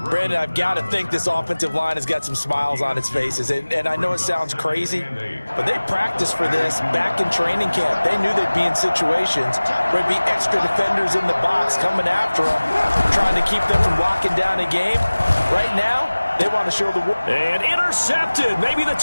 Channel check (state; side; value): inverted; both; correlation -1.00